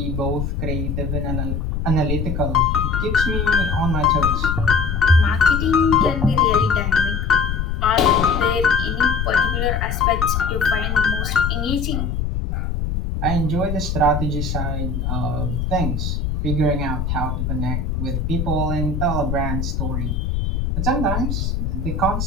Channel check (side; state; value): left; noise; rumble, 1 dB below the sound